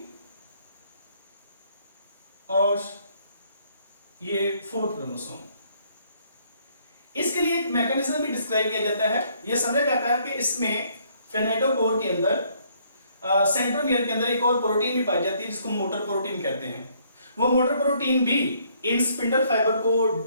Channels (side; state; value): both; inverted; correlation -0.66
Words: और ये फोर्थ क्रोमोसोम। इसके लिए एक मैकेनिज्म भी डिस्क्राइब किया जाता है। यह समझा जाता है कि इसमें किनेटोकोर के अंदर, सेंट्रोमियर के अंदर एक और प्रोटीन भी पाई जाती है जिसको मोटर प्रोटीन कहते हैं। वो मोटर प्रोटीन भी इन स्पिंडल फाइबर को